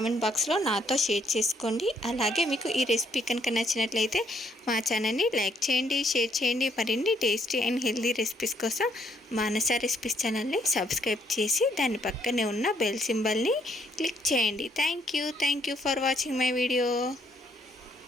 బాక్స్లో నాతో షేర్ చేసుకోండి. అలాగే మీకు ఈ రెసిపీ కనుక నచ్చినట్లయితే మా ఛానల్ని లైక్ చేయండి, షేర్ చేయండి. మరిన్ని టేస్టీ అండ్ హెల్దీ రెసిపీస్ కోసం మానస రెసిపీస్ ఛానల్ని సబ్స్క్రైబ్ చేసి దాని పక్కనే ఉన్న బెల్ సింబల్ని క్లిక్ చేయండి. Thank you for watching my video.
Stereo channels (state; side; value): normal; both; correlation 0.69